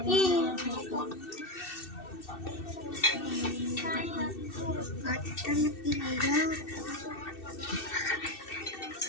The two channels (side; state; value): right; late; 2.6 ms